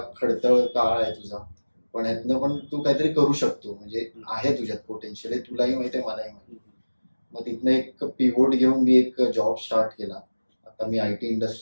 खडतळ काळ आहे तुझा, पण यातनं पण तू काहीतरी करू शकतो, म्हणजे आहे तुझ्यात पोटेन्शियल आहे, तुलाही माहिती आहे मलाही माहिती. मग तिथनं एक पिव्होट घेऊन मी एक जॉब स्टार्ट केला. आता मी IT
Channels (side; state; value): both; inverted; correlation -1.00